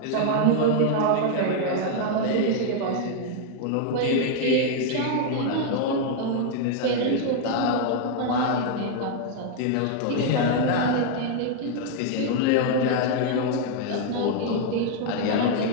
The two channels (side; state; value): both; different; correlation 0.00